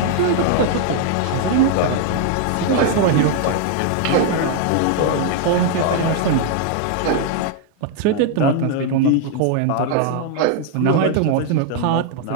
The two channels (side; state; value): both; different; correlation 0.00